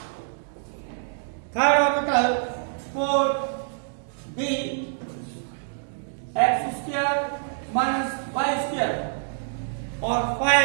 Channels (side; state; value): left; silent; digital silence